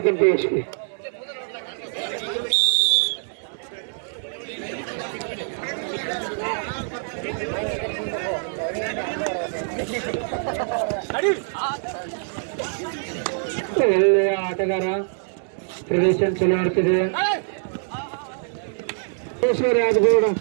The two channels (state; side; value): silent; left; digital silence